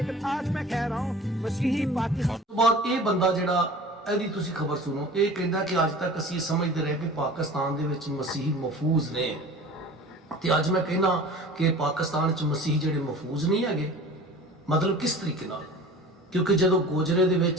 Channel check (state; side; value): normal; both; correlation 0.41